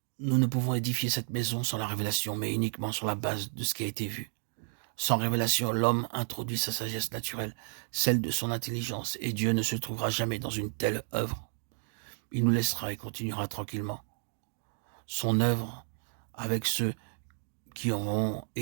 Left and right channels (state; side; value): silent; left; 56 dB below the other